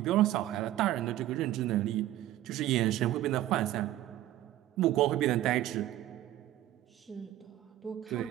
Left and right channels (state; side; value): quieter; left; 14.0 dB